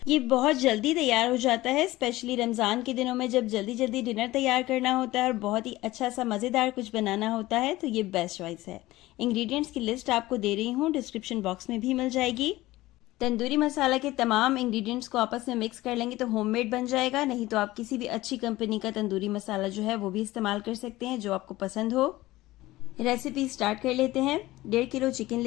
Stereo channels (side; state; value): right; quieter; 17.8 dB